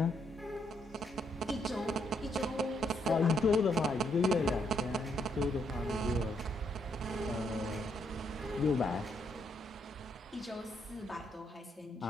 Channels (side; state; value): both; normal; correlation 0.75